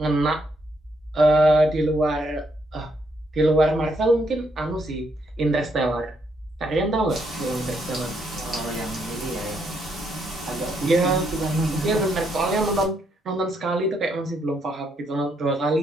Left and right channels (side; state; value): both; normal; correlation 0.75